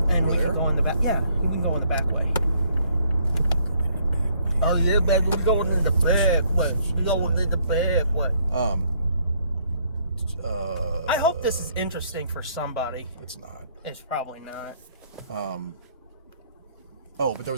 and we can go in the back. Yeah, we can go in the back way. Oh yeah, baby, we're going in the back way. We're going in the back way. I hope this is interesting for somebody. It's not. It's probably not. But there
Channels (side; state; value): both; inverted; correlation -0.67